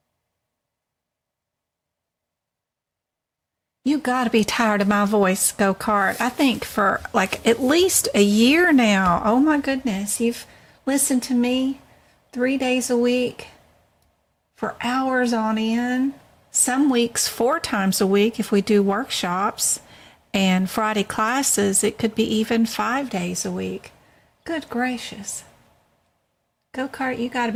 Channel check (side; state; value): both; identical; correlation 1.00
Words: You gotta be tired of my voice, Go-Kart. I think for like at least a year now. Oh my goodness. You've listened to me 3 days a week for hours on end. Some weeks 4 times a week if we do workshops, and Friday classes, it could be even 5 days a week. Good gracious. Go-Kart, you gotta